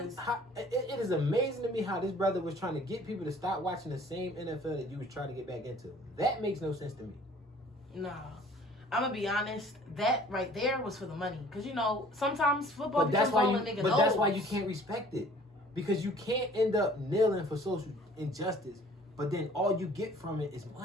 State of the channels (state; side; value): normal; both; correlation 0.52